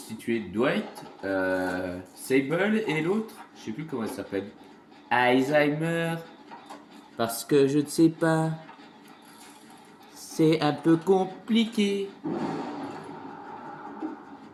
de Dwight, Sable et l'autre, je sais plus comment elle s'appelle. Alzheimer. Parce que je ne sais pas. C'est un peu compliqué.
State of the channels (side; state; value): both; identical; correlation 1.00